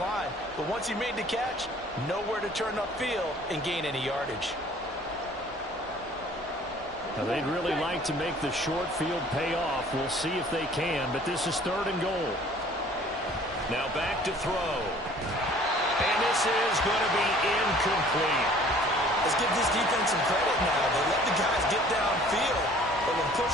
But once he made the catch, nowhere to turn upfield and gain any yardage. Now, they'd really like to make the short field pay off. We'll see if they can, but this is 3rd and goal. Now back to throw. And this is going to be incomplete. Let's give this defense some credit now. They let the guys get downfield. But when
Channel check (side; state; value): both; normal; correlation 0.53